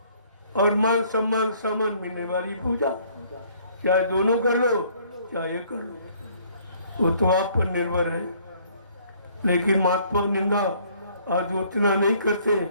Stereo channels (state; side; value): inverted; both; correlation -0.61